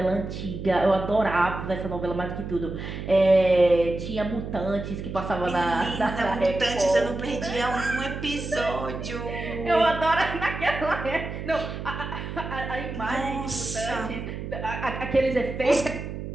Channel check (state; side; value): noise; right; hum, 7 dB below the sound